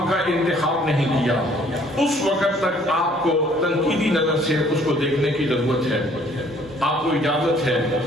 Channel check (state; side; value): normal; both; correlation 0.59